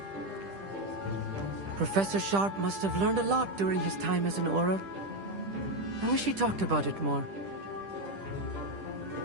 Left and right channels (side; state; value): left; late; 10 ms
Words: Professor Sharp must have learned a lot during his time as an Auror. I wish he talked about it more.